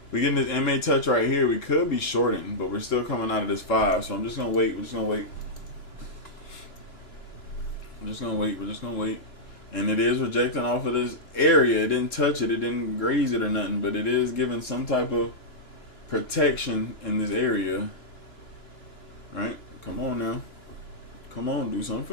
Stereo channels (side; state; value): right; late; 2.9 ms